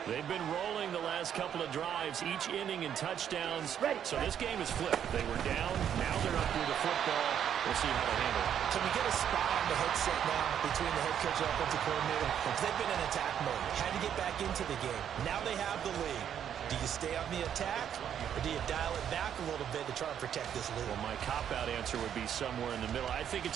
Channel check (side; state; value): left; quieter; 9.2 dB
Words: They've been rolling the last couple of drives, each inning in touchdowns. Ready. So this game is flipped. They were down, now they're up with the football. We'll see how they handle it. Can we get a spot on the headset now between the head coach and offensive coordinator? Because they've been in attack mode. Had to get back into the game. Now they have the lead. Do you stay on the attack, or do you dial it back a little bit to try and protect this lead? Well, my cop-out answer would be somewhere in the middle. I think it's